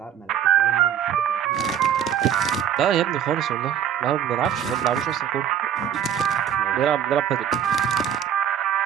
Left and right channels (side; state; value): left; quieter; 9.3 dB